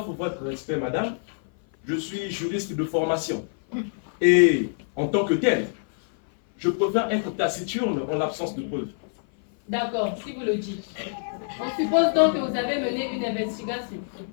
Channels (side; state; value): right; silent; 56 dB below the other